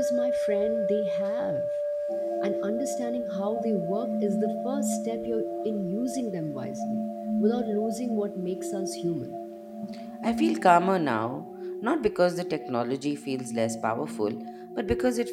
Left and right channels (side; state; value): both; identical; correlation 1.00